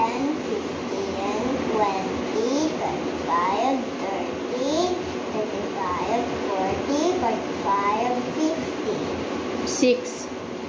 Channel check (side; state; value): both; identical; correlation 1.00